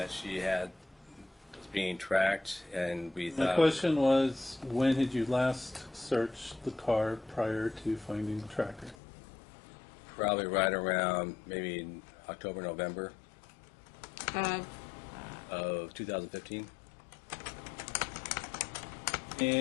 she was being tracked, and we My thought. question was, when had you last searched the car prior to finding the tracker? Probably right around maybe October, November of 2015.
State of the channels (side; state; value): right; drops out; at 9.0 s